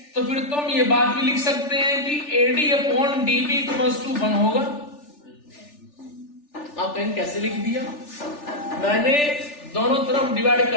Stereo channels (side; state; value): right; late; 3.4 ms